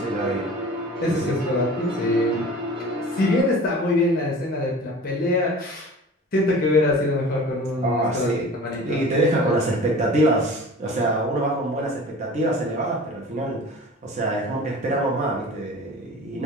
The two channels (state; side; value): normal; both; correlation 0.41